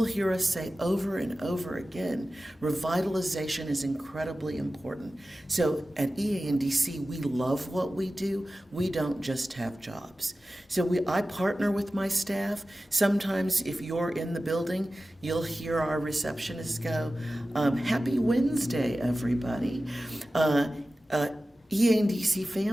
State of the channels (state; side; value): normal; both; correlation 0.95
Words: hear us say over and over again, revitalization is incredibly important. So at EANDC, we love what we do. We don't just have jobs. So I partner with my staff. Sometimes if you're in the building, you'll hear our receptionists go, happy Wednesday, everybody. EANDC